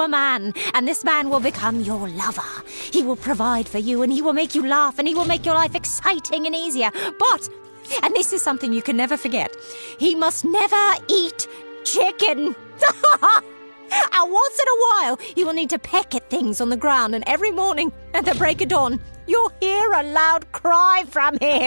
man, and this man will become your lover. He will provide for you, and he will make you laugh, and he will make your life exciting and easier. But, and this is something you can never forget, he must never eat chicken. And once in a while, he will need to peck at things on the ground, and every morning at the break of dawn, you'll hear a loud cry from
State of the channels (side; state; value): both; inverted; correlation -1.00